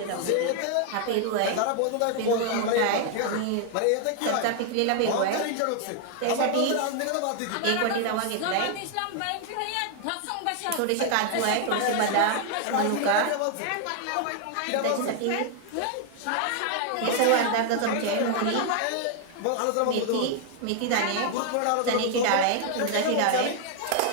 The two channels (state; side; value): different; both; correlation 0.00